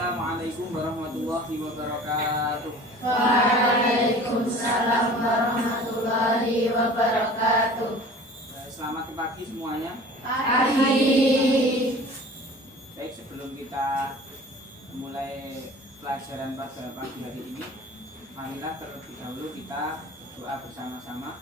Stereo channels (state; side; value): normal; both; correlation 0.43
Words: warahmatullahi wabarakatuh. Waalaikumsalam warahmatullahi wabarakatuh. Selamat pagi semuanya. Pagi. Baik, sebelum kita mulai pelajaran pada pagi hari ini, marilah terlebih dahulu kita doa bersama-sama.